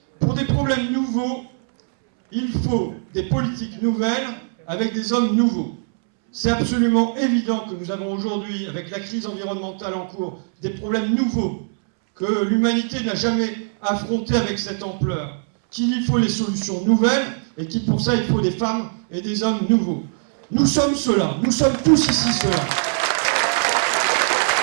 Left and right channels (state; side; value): silent; left; 65 dB below the other